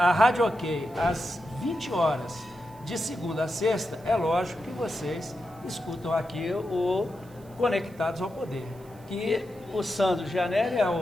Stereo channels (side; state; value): right; noise; hiss, 27 dB below the sound